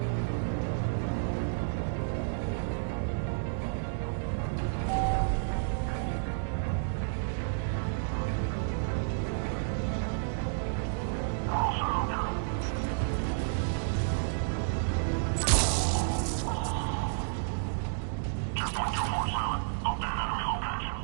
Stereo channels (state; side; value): silent; left; digital silence